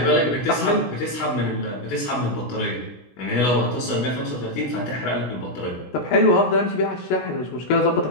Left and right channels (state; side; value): late; right; 16 ms